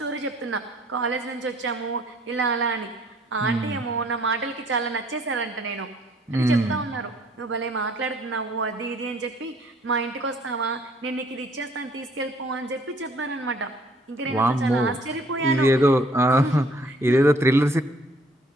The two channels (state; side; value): normal; both; correlation 0.59